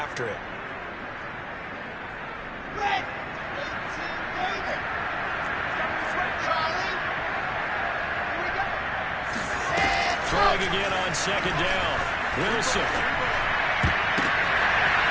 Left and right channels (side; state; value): both; identical; correlation 1.00